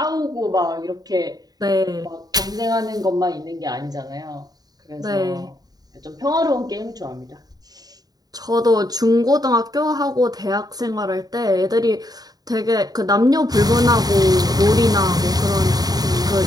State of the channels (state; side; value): late; left; 0.18 ms